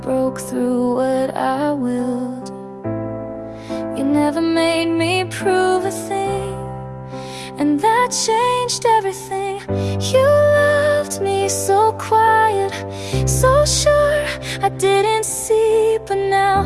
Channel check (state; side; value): identical; both; correlation 1.00